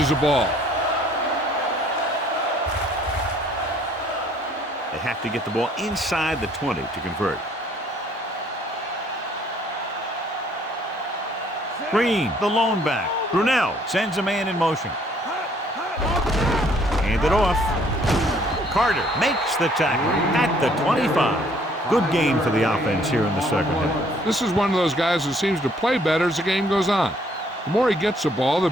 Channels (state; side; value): normal; both; correlation 0.62